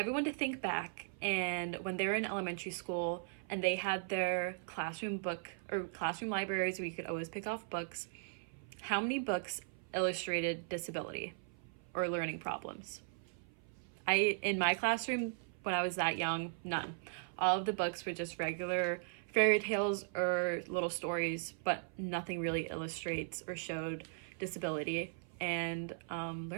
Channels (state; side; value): silent; left; 52 dB below the other